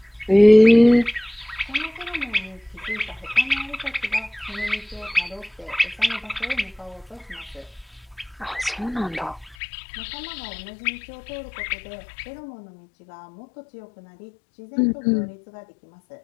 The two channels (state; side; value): drops out; right; at 9.6 s